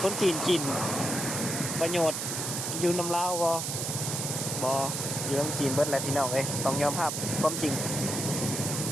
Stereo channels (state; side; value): noise; right; hiss, 3 dB below the sound